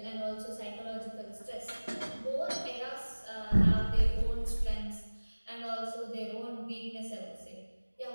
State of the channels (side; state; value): both; inverted; correlation -1.00